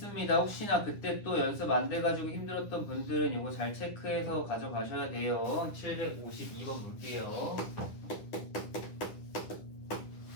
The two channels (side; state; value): right; late; 9.9 ms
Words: 혹시나 그때 또 연습 안 돼가지고 힘들었던 분들은 이거 잘 체크해서 가져가셔야 돼요. 752번 볼게요.